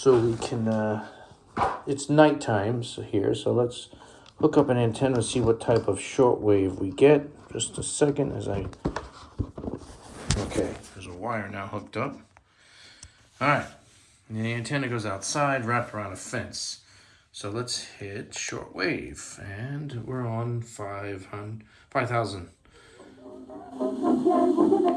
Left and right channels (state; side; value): identical; both; correlation 1.00